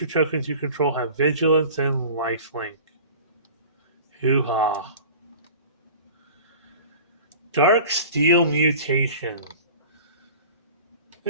tokens you control have vigilance and lifelink. Hoo-ha. Dark Steel Mutation.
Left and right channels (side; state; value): both; inverted; correlation -0.40